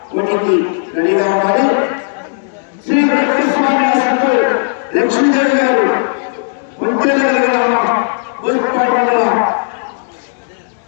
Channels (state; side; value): silent; right; digital silence